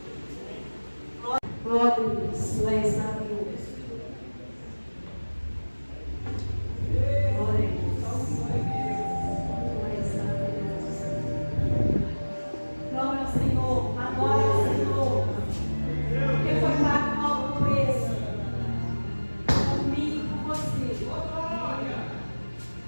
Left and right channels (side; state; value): both; inverted; correlation -1.00